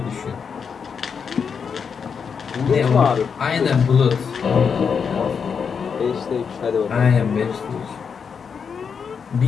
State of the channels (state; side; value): quieter; right; 6.4 dB